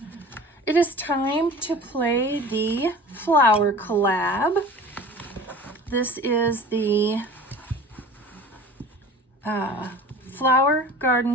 It is time to play the Flower Collab. This is the Flower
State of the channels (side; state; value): both; normal; correlation 0.40